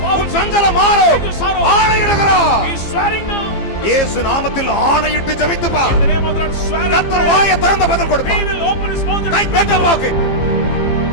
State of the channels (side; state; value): right; late; 15 ms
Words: poverty, உன் சஞ்சலம் மாறும். change your sorrow. ஆணையிடுகிறார். He is swearing now. இயேசு நாமத்தில் ஆணையிட்டு ஜெபித்து பார். In the name of the Lord, swear. கர்த்தர் வாயை திறந்து பதில் He கொடுப்பார். will open his mouth and கை தட்ட வாக்கு.